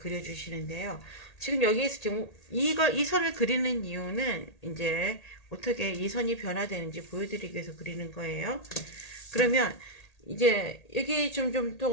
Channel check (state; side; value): late; right; 1.8 ms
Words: 지금 여기에서 지금 이 선을 그리는 이유는 이제 어떻게 이 선이 변화되는지 보여드리기 위해서 그리는 거예요. 그러면 이제 여기 좀